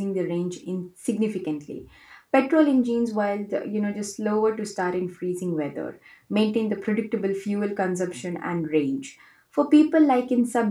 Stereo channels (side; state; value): both; identical; correlation 1.00